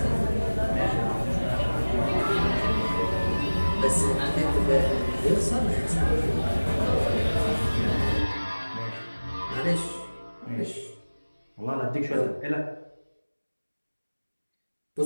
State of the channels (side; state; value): both; inverted; correlation -1.00